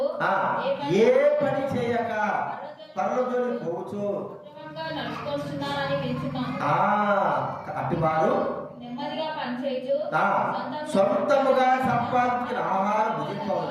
ఏ పని చేయక పనులతోని పోవచ్చు అటు వారు సొంతముగా సంపాదించిన ఆహారం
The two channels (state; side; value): identical; both; correlation 1.00